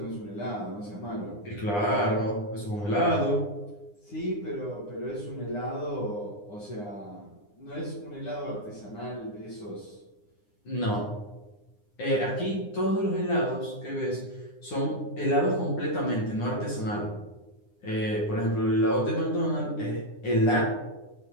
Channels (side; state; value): right; late; 9.8 ms